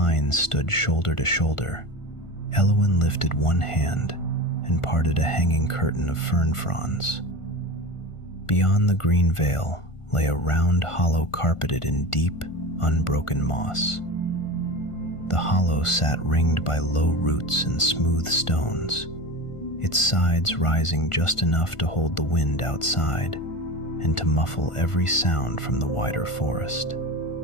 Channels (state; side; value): late; right; 1.5 ms